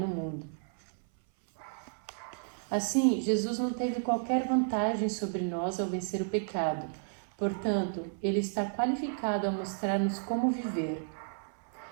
mundo. Assim, Jesus não teve qualquer vantagem sobre nós ao vencer o pecado. Portanto, ele está qualificado a mostrar-nos como viver.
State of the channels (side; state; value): left; silent; 56 dB below the other